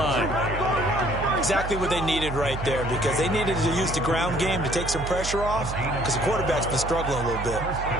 Exactly what they needed right there, because they needed to use the ground game to take some pressure off, because the quarterback's been struggling a little bit.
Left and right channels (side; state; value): right; noise; hum, 7 dB below the sound